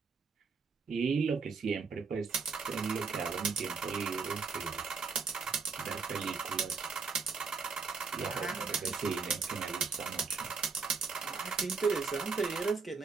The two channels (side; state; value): left; quieter; 5.0 dB